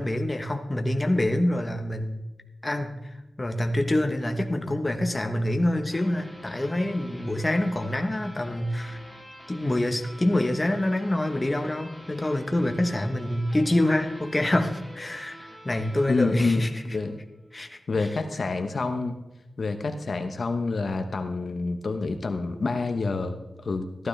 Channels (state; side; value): normal; both; correlation 0.97